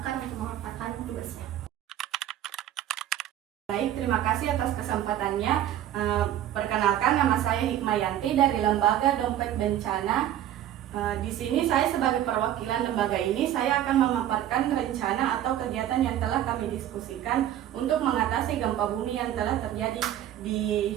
untuk memaparkan tugasnya. Baik, terima kasih atas kesempatannya. Perkenalkan, nama saya Hikmayanti dari Lembaga Dompet Bencana. Di sini saya sebagai perwakilan lembaga ini, saya akan memaparkan rencana atau kegiatan yang telah kami diskusikan untuk mengatasi gempa bumi yang telah terjadi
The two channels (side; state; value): left; quieter; 11.9 dB